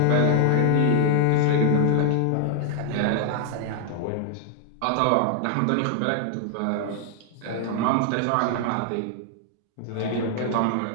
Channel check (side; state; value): both; different; correlation -0.01